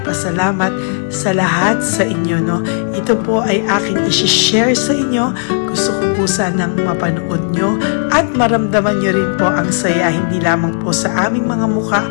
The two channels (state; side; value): silent; right; digital silence